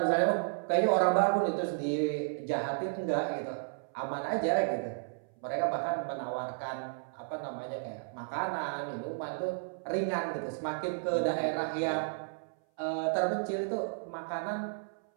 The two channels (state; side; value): silent; left; 56 dB below the other